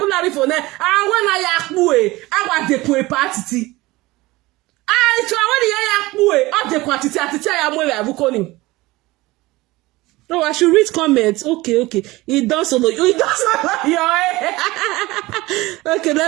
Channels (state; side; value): quieter; left; 20.1 dB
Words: for there, and when I want the party. I no, I should read comments. Okay. It does solo. Okay,